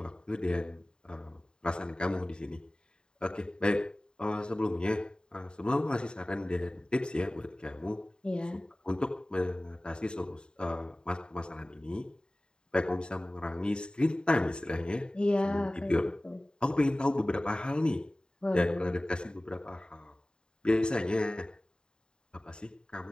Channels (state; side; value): late; right; 0.048 ms